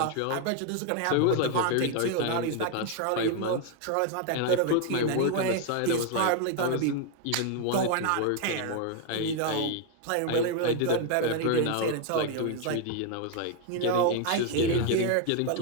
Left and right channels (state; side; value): different; both; correlation 0.01